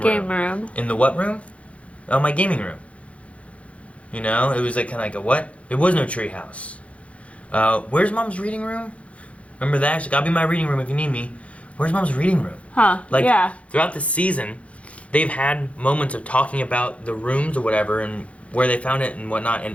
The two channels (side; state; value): right; late; 0.063 ms